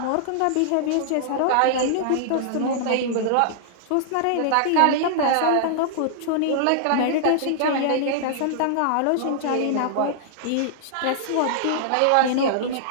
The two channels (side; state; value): both; different; correlation -0.01